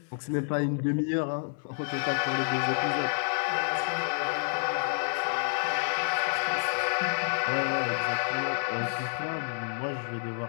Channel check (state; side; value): silent; right; 59 dB below the other